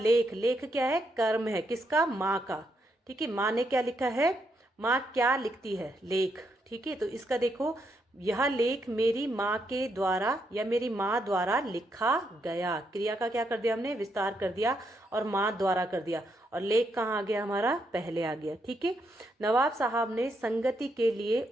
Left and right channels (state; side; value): normal; both; correlation 0.78